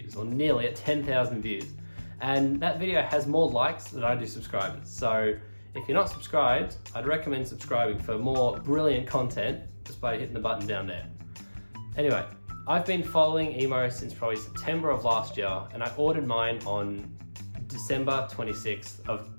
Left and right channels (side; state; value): both; inverted; correlation -1.00